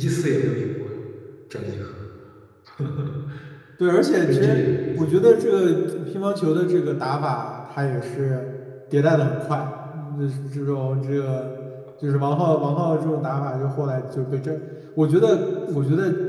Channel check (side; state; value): both; identical; correlation 1.00